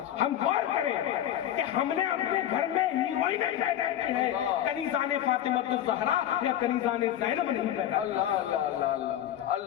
ہم غور کریں کہ ہم نے اپنے گھر میں ہیروئنیں پیدا کی ہیں، کنیزان فاطمہ الزہرا یا کنیزان زینب نہیں پیدا کی۔ اللہ اللہ اللہ اللہ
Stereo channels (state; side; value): quieter; right; 11.3 dB